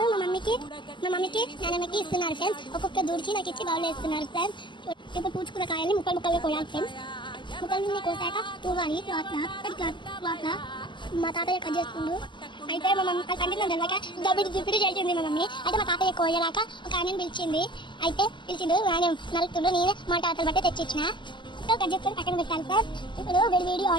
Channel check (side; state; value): right; late; 0.23 ms